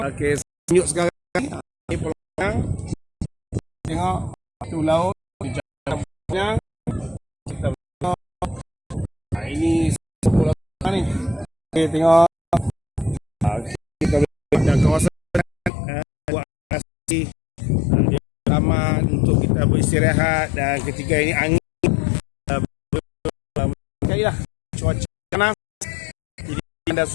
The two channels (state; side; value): drops out; right; at 15.7 s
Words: tunjuk sekarang. Pulau Pinang, tengok batu laut, Pinang. Kita tengok ini Pulau Pinang ni. Okay, tengok kita ada kawasan buat asli taman untuk kita beristirahat, dan ketika ini angin sekali lah cuaca panas, jadi anda